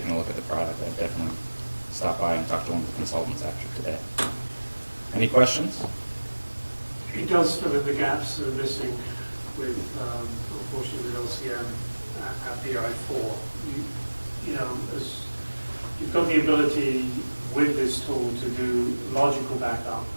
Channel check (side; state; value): both; inverted; correlation -1.00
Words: a look at the product, I'd definitely stop by and talk to one of the consultants after today. Any questions? It does fill in the gaps that are missing with, unfortunately, with LCM at BI4. You know, as you've got the ability with this tool to do logical backup,